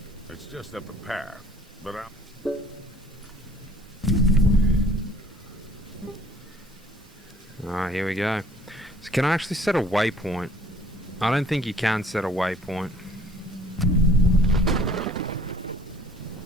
It's just up a path, but Alright, here we go. So can I actually set a waypoint? I don't think you can set a waypoint.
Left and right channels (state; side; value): normal; both; correlation 0.55